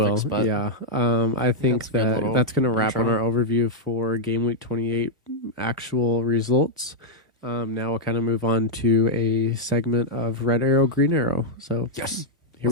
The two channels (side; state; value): both; normal; correlation -0.03